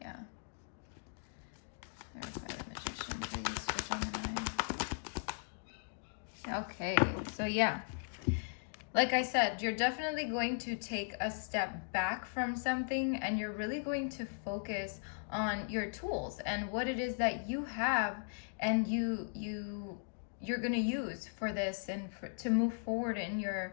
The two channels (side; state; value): right; silent; digital silence